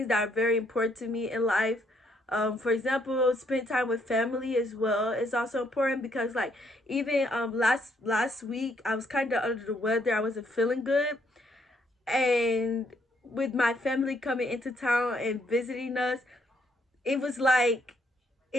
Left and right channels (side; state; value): both; normal; correlation 0.71